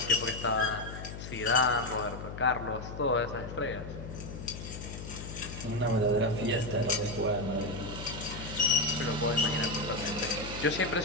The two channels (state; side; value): noise; left; hum, 9 dB below the sound